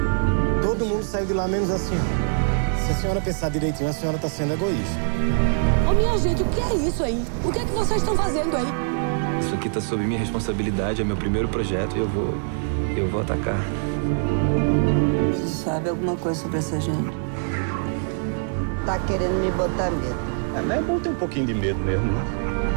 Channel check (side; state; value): left; silent; 63 dB below the other